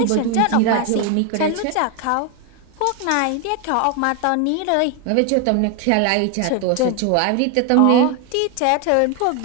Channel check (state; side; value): different; both; correlation 0.01